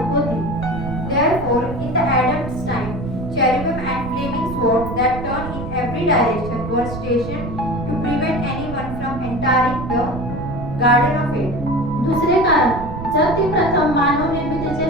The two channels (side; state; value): right; noise; rumble, 8 dB below the sound